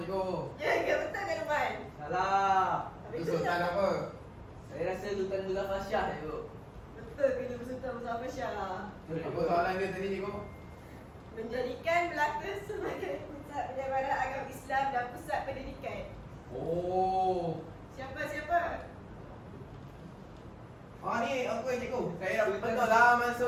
Ya, betul ke Lukman? Salah. Itu Sultan apa? Saya rasa Sultan Muzaffar Shah cikgu. Betul ke dia bersultan bersama Syah? Apa soalan dia tadi cikgu? Menjadikan Melaka sebagai pusat penyebaran agama Islam dan pusat pendidikan. Oh. Siapa? Ah ni aku yang cikgu. Saya dah betul laman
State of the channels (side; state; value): both; identical; correlation 1.00